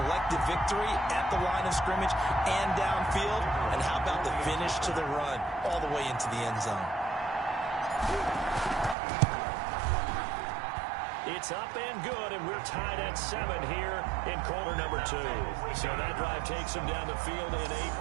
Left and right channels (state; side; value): drops out; left; at 9.0 s